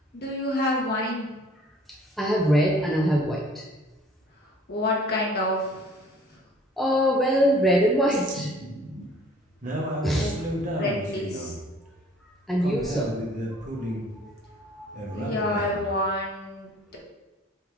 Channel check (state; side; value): normal; both; correlation 0.54